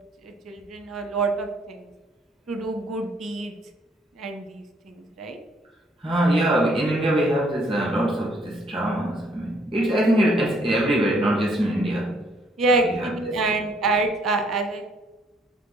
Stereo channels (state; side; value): normal; both; correlation 0.66